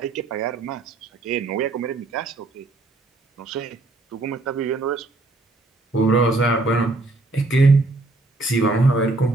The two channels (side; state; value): left; quieter; 3.1 dB